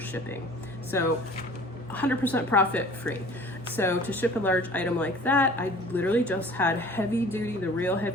So 100% profit free. So to ship a large item like that, I literally just had the real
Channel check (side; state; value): both; normal; correlation 0.47